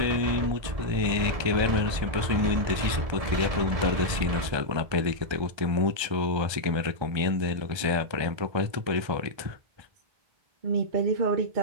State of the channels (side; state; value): left; late; 1.3 ms